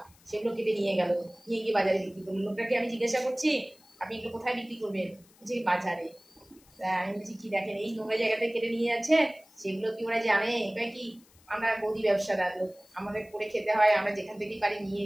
সেগুলো কেটে নিয়ে গেল, নিয়ে গিয়ে বাজারে বিক্রি করলো। লোকটাকে আমি জিজ্ঞাসা করছি আপনি এগুলো কোথায় বিক্রি করবেন, যে বাজারে। আমি বলছি কি দেখেন এই নোংরা জায়গাতে কেটে নিয়ে যাচ্ছে, সেগুলো কি ওরা জানে? এটা কি আমরা গদি ব্যবসাদার লোক, আমাদের করে খেতে হয়, আমরা যেখান থেকেই পারি নিয়ে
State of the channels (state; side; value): noise; left; hiss, 29 dB below the sound